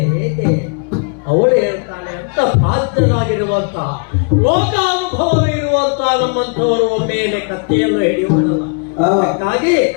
ಹೇಗೆ ಅವಳು ಹೇಳ್ತಾಳೆ ಅಂತ ಪ್ರಾಜ್ಞರಾಗಿರುವಂತಹ ಲೋಕಾನುಭವವಿರುವಂತಹ ನಮ್ಮಂಥವರು ಒಮ್ಮೆಲೆ ಕತ್ತೆಯನ್ನು ಹಿಡಿಯುವುದಲ್ಲ. ಅದಕ್ಕಾಗಿ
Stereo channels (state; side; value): quieter; right; 39.9 dB